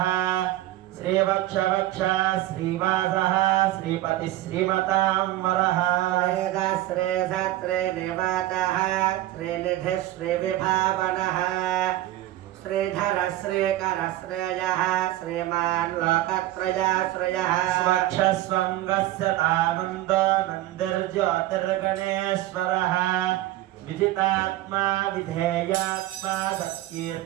श्रीवक्षवक्षा श्रीवासः श्रीपतिः श्रीमतां वरः श्रेधाश्रेधत्रे निवातः श्रीनिधिः श्रीविभावनः श्रीधर श्रीकर श्रेयः श्रीमान् लोकत्रयाश्रयः स्वक्षस्वङ्गस्य तानन्दो नन्दिर्ज्योतिर्गणेश्वरः विजितात्मा विधेयात्मा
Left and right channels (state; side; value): quieter; left; 15.2 dB